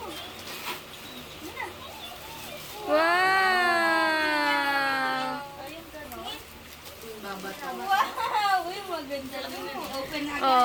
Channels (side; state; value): both; identical; correlation 1.00